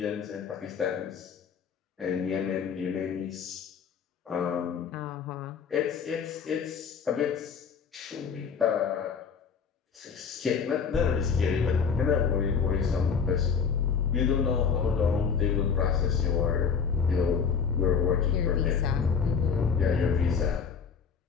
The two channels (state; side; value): quieter; right; 6.3 dB